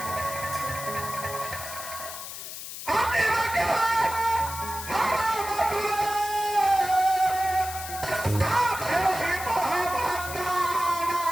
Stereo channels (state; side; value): noise; left; hiss, 9 dB below the sound